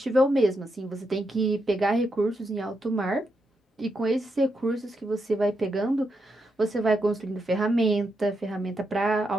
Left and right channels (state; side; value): normal; both; correlation 0.83